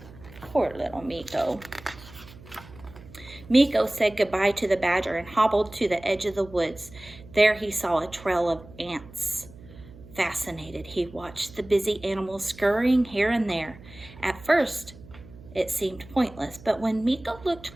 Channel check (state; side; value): noise; right; hum, 20 dB below the sound